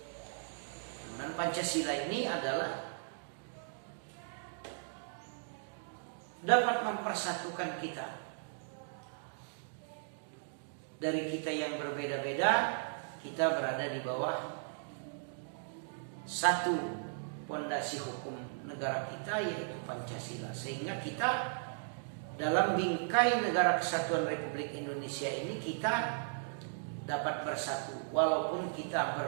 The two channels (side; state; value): left; silent; digital silence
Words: Dan Pancasila ini adalah dapat mempersatukan kita. Dari kita yang berbeda-beda, kita berada di bawah satu pondasi hukum negara kita, yaitu Pancasila. Sehingga kita dalam bingkai negara kesatuan Republik Indonesia ini kita dapat bersatu walaupun kita